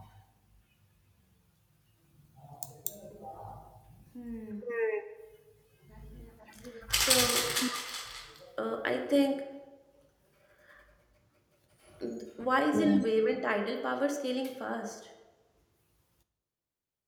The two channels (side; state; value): both; identical; correlation 1.00